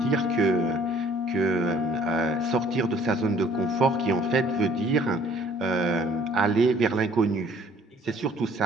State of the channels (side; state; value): both; normal; correlation 0.57